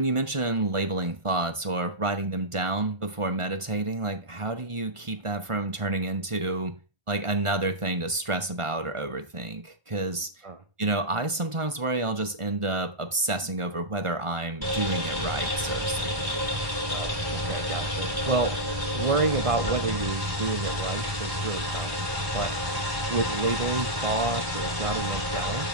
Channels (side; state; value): left; late; 1.4 ms